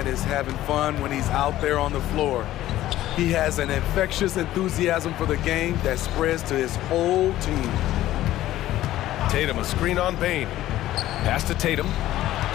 is having fun when he's out there on the floor. He has an infectious enthusiasm for the game that spreads to his whole team. Tatum, a screen on Payne. Pass to Tatum.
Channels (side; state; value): right; quieter; 14.3 dB